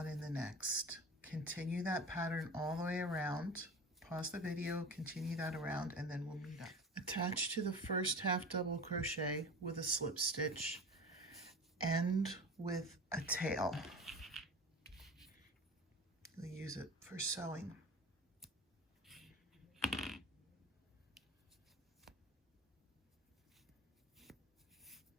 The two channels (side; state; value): both; normal; correlation 0.34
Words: in the next. Continue that pattern all the way around. Pause the video, continue that around, and then we'll meet up. Attach to the first half double crochet with a slip stitch, end with a tail. We'll use it for sewing.